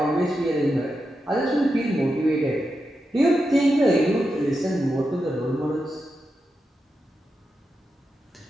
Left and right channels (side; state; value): both; normal; correlation 0.88